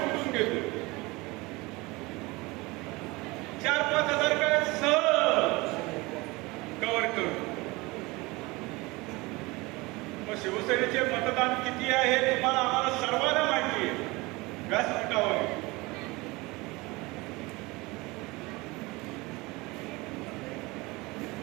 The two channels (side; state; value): left; quieter; 23.2 dB